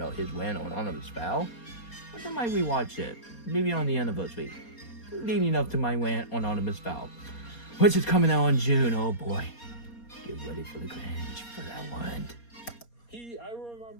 his win on Anonymous Foul, I might rewatch it, maybe on the anniversary, leading up to my win on Anonymous Foul, which is coming out in June. Oh boy, get ready for the cringe for that one. I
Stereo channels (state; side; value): late; right; 4.2 ms